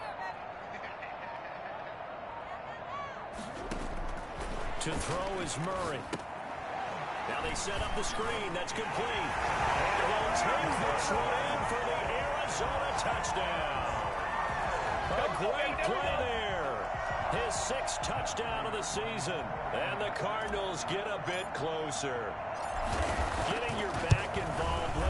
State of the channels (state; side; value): identical; both; correlation 1.00